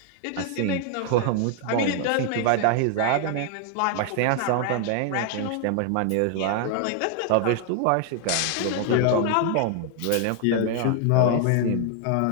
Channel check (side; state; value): both; different; correlation 0.00